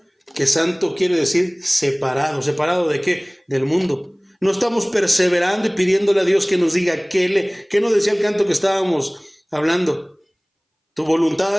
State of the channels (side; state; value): both; identical; correlation 1.00